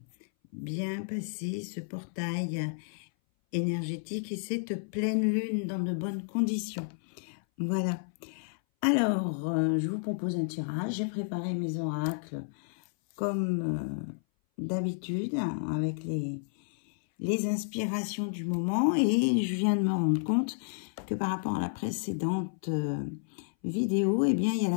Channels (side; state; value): right; silent; 57 dB below the other